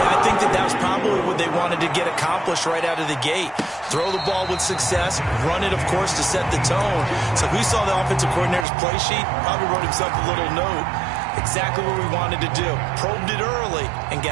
I think that was probably what they wanted to get accomplished right out of the gate. Throw the ball with success, run it, of course, to set the tone. So we saw the offensive coordinator's play sheet, probably wrote himself a little note. Exactly what we wanted to do. Probed it early and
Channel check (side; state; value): left; drops out; at 8.7 s